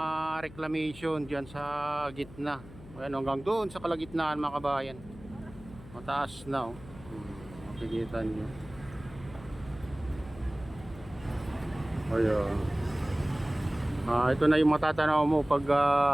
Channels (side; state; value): left; noise; hum, 18 dB below the sound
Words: reclamation dyan sa gitna. Ayan, hanggang doon sa kalagitnaan mga kabayan, mataas na makikita nyo. Ayan. Ito na yung matatanaw mo pag